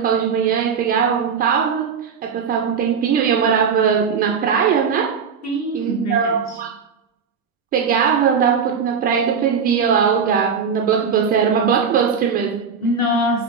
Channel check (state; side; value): quieter; left; 6.2 dB